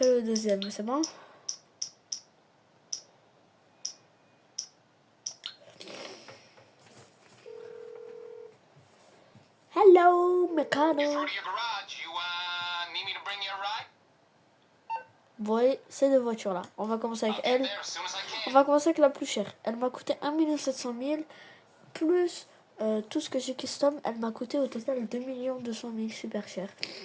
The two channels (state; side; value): identical; both; correlation 1.00